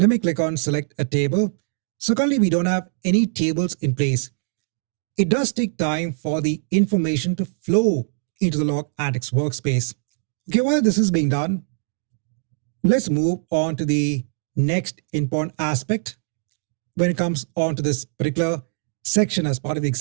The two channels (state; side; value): silent; left; digital silence